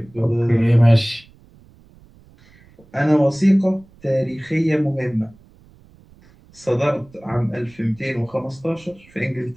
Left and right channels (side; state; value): right; noise; rumble, 27 dB below the sound